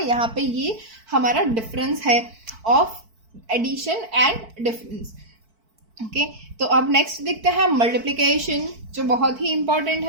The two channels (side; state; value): left; late; 4.5 ms